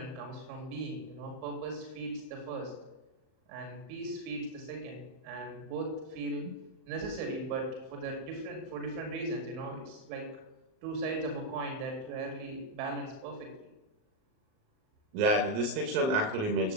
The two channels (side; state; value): left; late; 38 ms